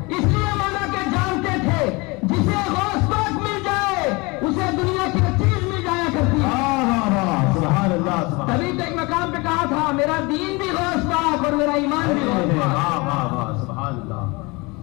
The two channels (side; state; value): right; quieter; 25.9 dB